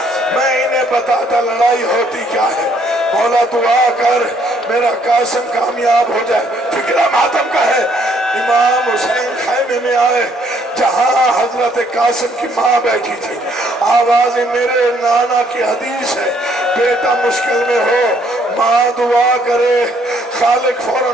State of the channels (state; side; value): normal; both; correlation 0.66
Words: میں انہیں بتاتا لڑائی ہوتی کیا ہے. مولا دعا کر میرا قاسم کامیاب ہو جائے. فکرہ ماتم کا ہے. امام حسین خیمے میں آئے جہاں حضرت قاسم کی ماں بیٹھی تھی. آواز میرے نانا کی حدیث ہے, بیٹا مشکل میں ہو ماں دعا کرے, خالق